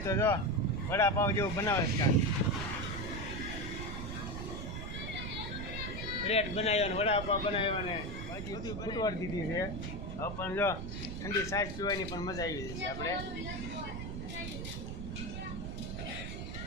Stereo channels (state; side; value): noise; right; rumble, 6 dB below the sound